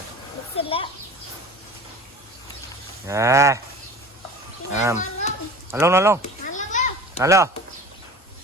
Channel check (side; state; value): both; normal; correlation 0.38